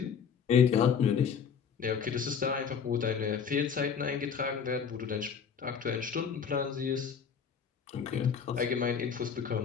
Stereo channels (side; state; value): right; quieter; 6.8 dB